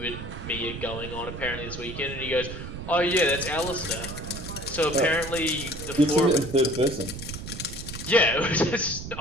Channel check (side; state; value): right; noise; rumble, 9 dB below the sound